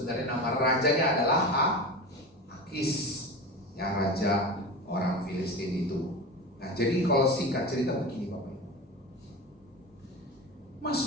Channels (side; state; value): both; normal; correlation 0.28